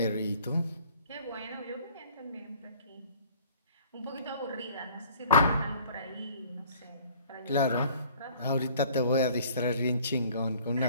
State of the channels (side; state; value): both; inverted; correlation -0.53